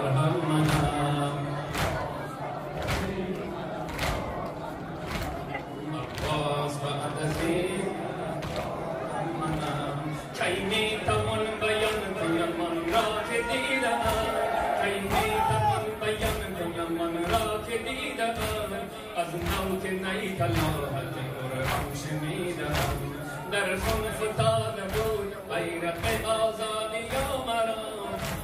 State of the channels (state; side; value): identical; both; correlation 1.00